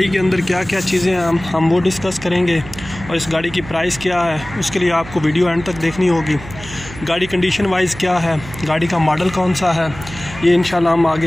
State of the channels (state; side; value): noise; right; hum, 14 dB below the sound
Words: के अंदर क्या क्या चीज़ें हैं हम वो डिस्कस करेंगे, और इस गाड़ी की प्राइस क्या है उसके लिए आपको वीडियो एंड तक देखनी होगी। गाड़ी कंडीशन वाइज क्या है, गाड़ी का मॉडल कौन सा है, ये इंशाल्लाह हम आगे